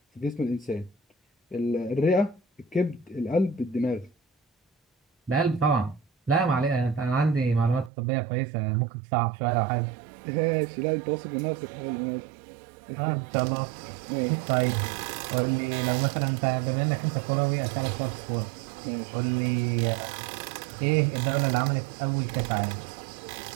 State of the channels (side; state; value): left; drops out; at 7.9 s